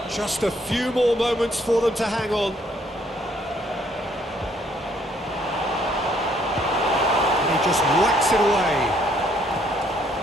Just a few more moments for them to hang on. And he just whacks it away.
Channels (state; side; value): normal; both; correlation 0.66